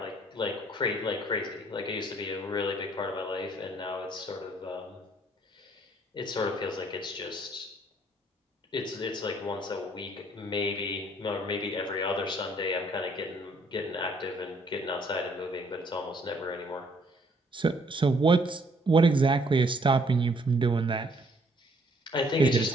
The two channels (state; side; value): normal; both; correlation 0.64